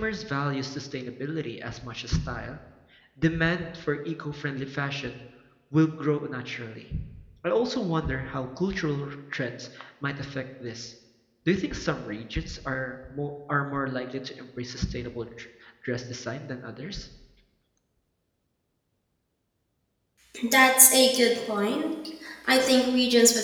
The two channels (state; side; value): identical; both; correlation 1.00